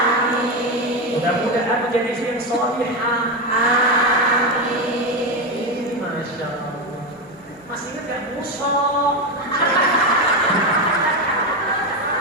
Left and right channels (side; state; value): both; normal; correlation 0.12